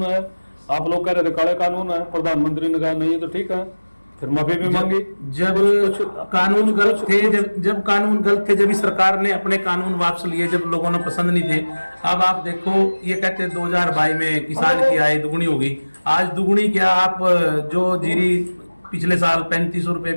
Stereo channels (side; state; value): both; inverted; correlation -1.00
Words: है, आप लोग कह रहे थे काले कानून है, प्रधानमंत्री ने कहा नहीं तो ठीक है, फिर माफी भी मांगी। जब कानून गलत थे, जब कानून गलत थे, जब इस सरकार ने अपने कानून वापस लिए, जब लोगों ने पसंद नहीं थे। अब आप देखो, ये कहते 2022 में किसान की आय दुगनी होगी। आज दुगनी क्या, आप जो जीरी पिछले साल 3500 रुपए